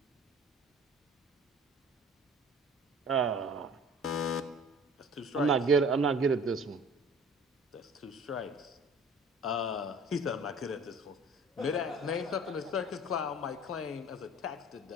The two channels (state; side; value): normal; both; correlation 0.47